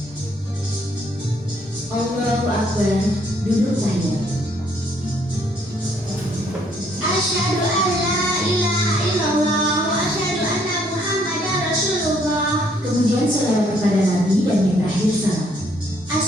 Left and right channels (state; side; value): normal; both; correlation 0.67